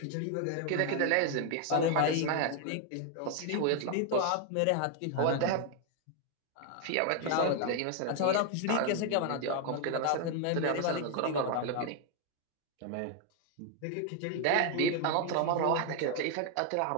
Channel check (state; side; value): different; both; correlation 0.00